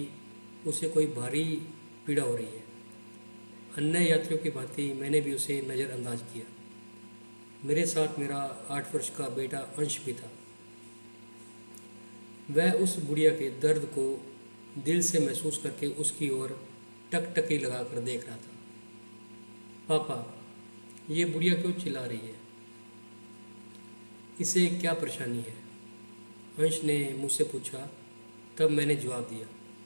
उसे कोई भारी पीड़ा हो रही है। अन्य यात्रियों की भांति मैंने भी उसे नज़रअंदाज किया। मेरे साथ मेरा 8 वर्ष का बेटा अंश भी था। वह उस बुढ़िया के दर्द को दिल से महसूस करके उसकी ओर टकटकी लगाकर देख रहा था। पापा, ये बुढ़िया क्यों चिल्ला रही है? इसे क्या परेशानी है? अंश ने मुझसे पूछा। तब मैंने जवाब दिया,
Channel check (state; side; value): inverted; both; correlation -1.00